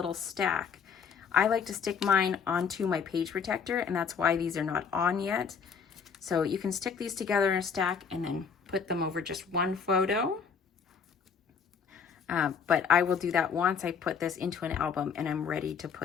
stack. I like to stick mine onto my page protector, and that's why these are not on yet. So you can stick these together in a stack and then put them over just one photo. But I will do that once I put this into an album and I'm ready to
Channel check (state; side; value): quieter; right; 6.3 dB